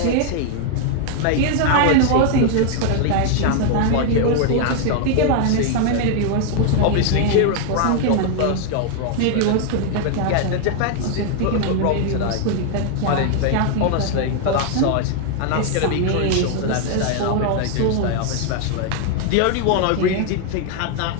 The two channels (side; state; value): both; different; correlation 0.00